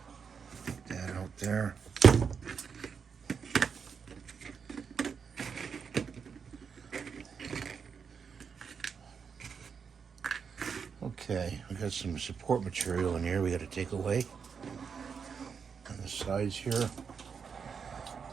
That out there. Okay, we got some support material in here we got to take away. On the sides here.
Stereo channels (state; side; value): quieter; left; 6.3 dB